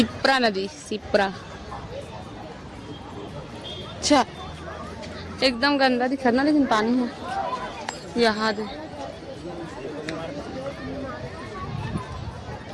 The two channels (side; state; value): both; identical; correlation 1.00